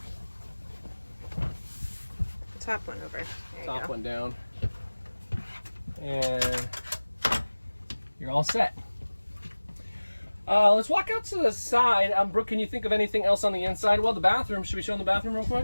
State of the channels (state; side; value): inverted; both; correlation -1.00